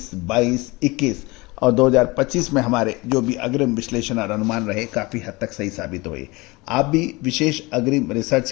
22, 21 और 2025 में हमारे जो भी अग्रिम विश्लेषण और अनुमान रहे काफ़ी हद तक सही साबित हुए। आप भी विशेष अग्रिम रिसर्च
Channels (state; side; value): quieter; right; 23.8 dB